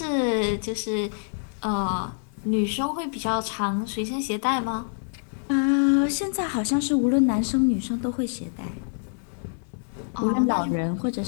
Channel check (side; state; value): right; silent; 61 dB below the other